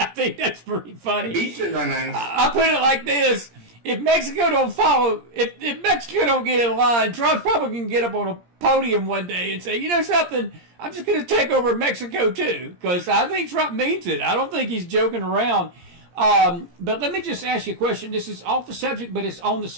I think that's pretty funny. Beaches are nice. I put it like this. If Mexico don't follow, if Mexico don't get in line, Trump's probably going to get up on a podium one day and say, you know something, I'm just going to take over Mexico too, because I think Trump means it. I don't think he's joking around. But let me just ask you a question. This is off the subject, but it's on the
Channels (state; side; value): late; left; 17 ms